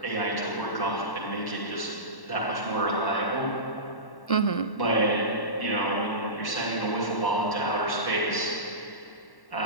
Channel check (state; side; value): late; right; 1.1 ms